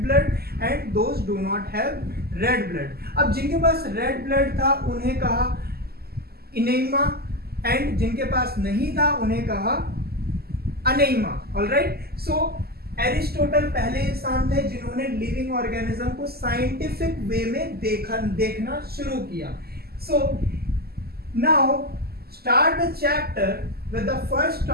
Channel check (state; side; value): late; left; 0.46 ms